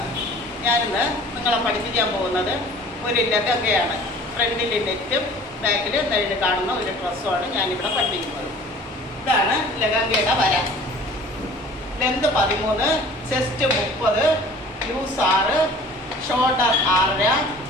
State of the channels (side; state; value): both; normal; correlation 0.47